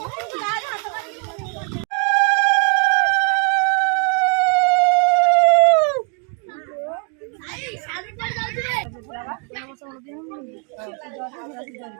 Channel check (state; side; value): quieter; left; 35.2 dB